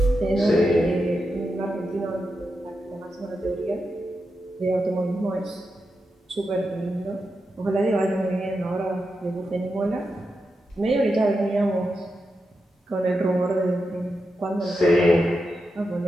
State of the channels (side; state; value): both; normal; correlation 0.88